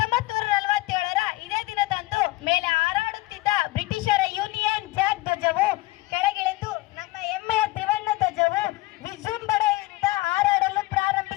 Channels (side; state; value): right; quieter; 20.2 dB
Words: ಇದೇ ದಿನದಂದು ಮೇಲೆ ಹಾರಾಡುತ್ತಿದ್ದ ಬ್ರಿಟಿಷರ ಯೂನಿಯನ್ ಜಾಕ್ ಧ್ವಜವು ಕೆಳಗಿಳಿದು ನಮ್ಮ ಹೆಮ್ಮೆಯ ತ್ರಿವರ್ಣ ಧ್ವಜವು ವಿಜೃಂಭಣೆಯಿಂದ ಹಾರಾಡಲು